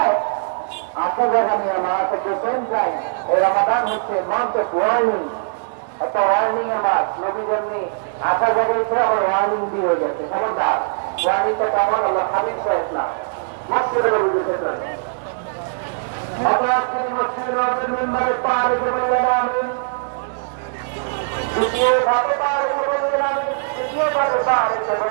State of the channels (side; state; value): left; silent; digital silence